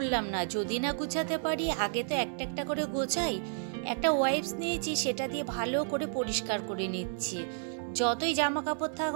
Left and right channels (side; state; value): left; silent; digital silence